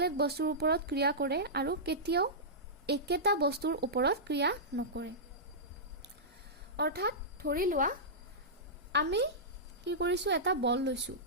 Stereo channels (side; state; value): both; normal; correlation -0.15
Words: বস্তুৰ ওপৰত ক্ৰিয়া কৰে আৰু কেতিয়াও একেটা বস্তুৰ ওপৰত ক্ৰিয়া নকৰে। অৰ্থাৎ ধৰি লোৱা আমি কি কৰিছোঁ, এটা বল লৈছোঁ